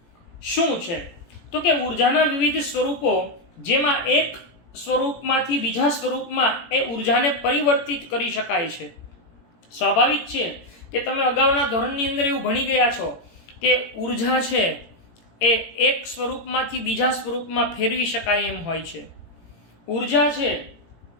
શું છે? તો કે ઉર્જાના વિવિધ સ્વરૂપો જેમાં એક સ્વરૂપમાંથી બીજા સ્વરૂપમાં એ ઉર્જાને પરિવર્તિત કરી શકાય છે. સ્વાભાવિક છે કે તમે અગાઉના ધોરણની અંદર એવું ભણી ગયા છો કે ઉર્જા છે એ એક સ્વરૂપમાંથી બીજા સ્વરૂપમાં ફેરવી શકાય એમ હોય છે. ઉર્જા છે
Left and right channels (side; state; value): right; late; 17 ms